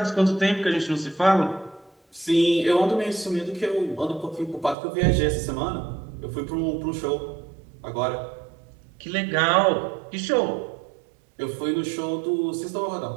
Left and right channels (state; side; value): drops out; left; at 4.8 s